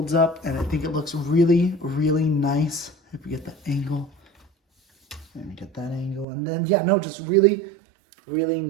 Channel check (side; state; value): left; drops out; at 6.2 s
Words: up, and I think it looks really, really nice. If we get the angle, let me get that angle, and then yeah, no, just really, really